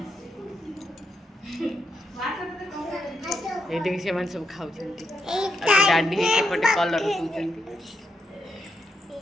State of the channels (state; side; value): normal; both; correlation 0.82